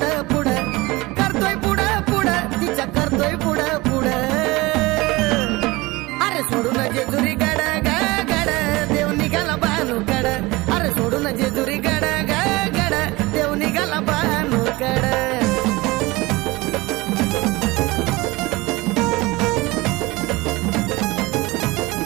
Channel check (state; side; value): quieter; left; 21.9 dB